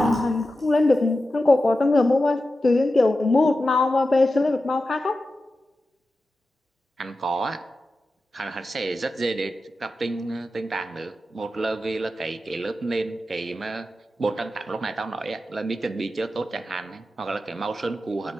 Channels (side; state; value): both; normal; correlation 0.92